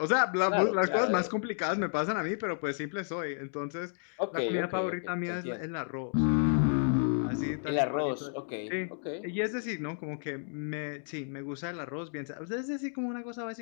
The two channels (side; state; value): right; silent; digital silence